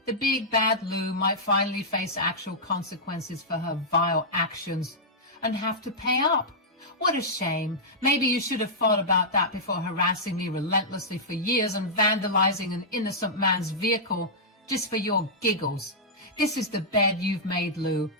The big bad Lou might finally face actual consequences for her vile actions and have to pay up. What a shame. Maybe you should have thought about that before harassing me relentlessly for years and vandalizing an innocent man's vehicle just for your giggles. This is the bed you've made, Lou.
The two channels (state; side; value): normal; both; correlation -0.11